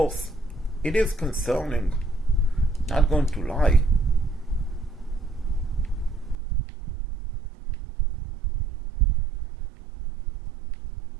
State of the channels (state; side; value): drops out; left; at 6.4 s